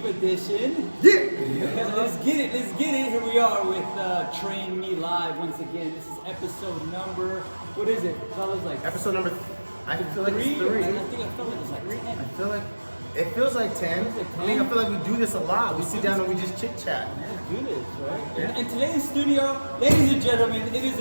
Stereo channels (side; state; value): both; inverted; correlation -1.00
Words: edition. Yeah. Let's get it. Here we are with Train Me Live once again. This is episode number, what is it? Fellas, like Episode number, I feel like it's 3. I think I felt like it's like 10. I feel like, it feels like 10. Feels like 10. I mean, I feel like we do this a lot. We sit down and we just chit chat. Let's do this, right? And today in studio, ladies and gentlemen, it is